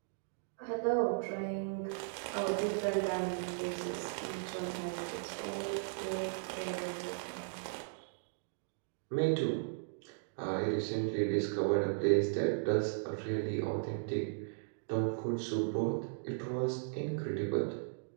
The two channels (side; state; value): left; silent; digital silence